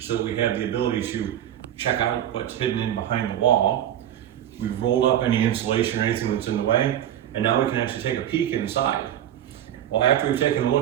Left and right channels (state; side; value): quieter; left; 11.1 dB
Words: we have the ability to check out what's hidden in behind the wall. We've rolled up any insulation or anything that's in the way, and now we can actually take a peek inside. Well, after we've taken a